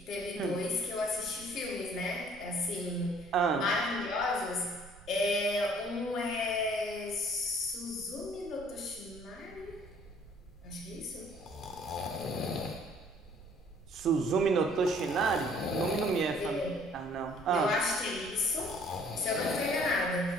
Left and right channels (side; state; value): right; noise; rumble, 20 dB below the sound